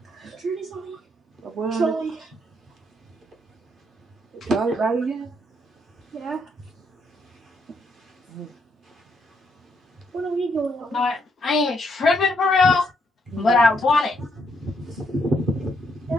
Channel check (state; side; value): normal; both; correlation 0.74